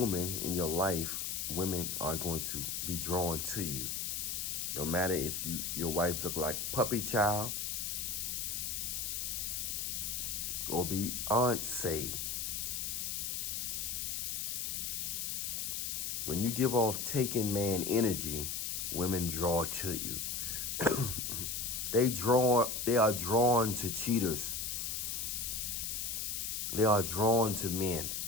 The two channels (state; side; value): noise; left; hiss, 2 dB below the sound